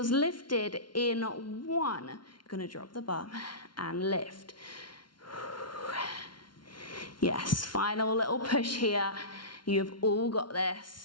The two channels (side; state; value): right; late; 0.72 ms